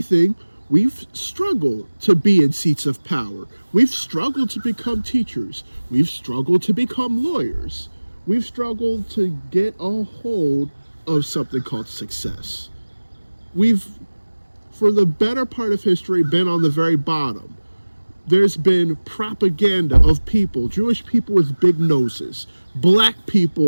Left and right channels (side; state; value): both; inverted; correlation -1.00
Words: we've struggled to be in seats of power. We've struggled to become teachers. We've struggled to become lawyers. We've struggled to get a hold of something called success. We've, for the better part of history, been on the very bottom. There's been propaganda of people, Jewish people with big noses, black